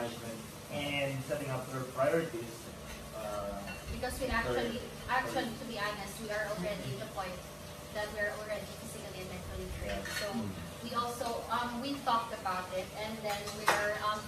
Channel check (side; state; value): both; identical; correlation 1.00